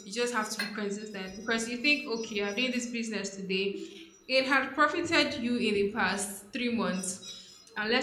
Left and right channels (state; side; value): identical; both; correlation 1.00